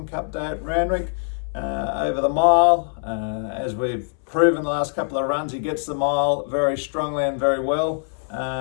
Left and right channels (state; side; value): silent; right; 63 dB below the other